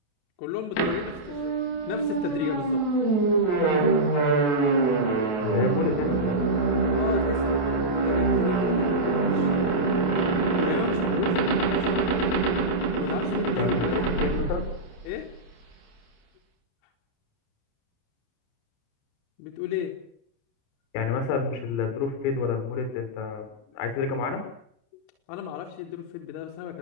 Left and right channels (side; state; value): right; late; 28 ms